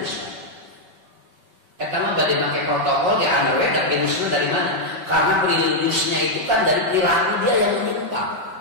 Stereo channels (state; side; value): late; left; 5.5 ms